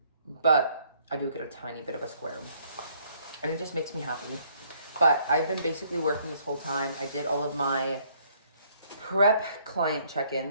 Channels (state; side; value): inverted; both; correlation -0.65